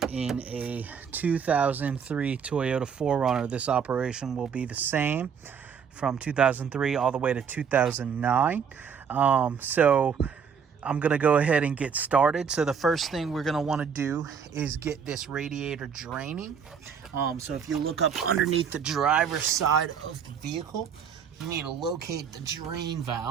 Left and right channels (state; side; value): quieter; left; 6.9 dB